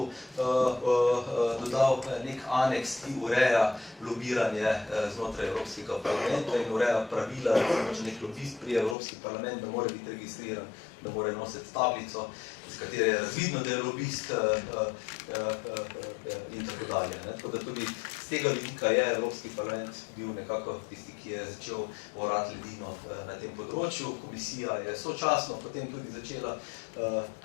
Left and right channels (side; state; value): right; drops out; at 9.0 s